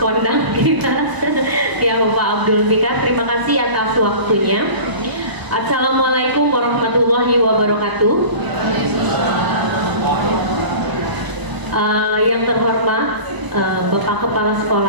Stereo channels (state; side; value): late; left; 1.0 ms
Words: kita, ya Bapak Abdul Fikar. Terima kasih atas waktunya. Assalamualaikum warahmatullahi wabarakatuh. Yang terhormat Bapak Kepala